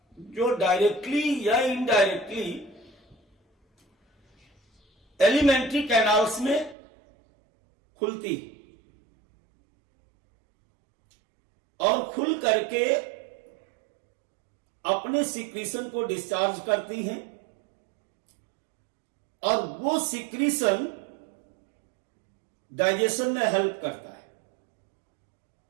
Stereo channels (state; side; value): drops out; left; at 6.8 s